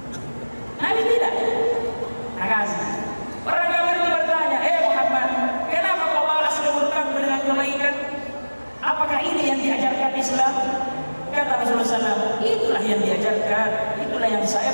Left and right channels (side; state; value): both; inverted; correlation -1.00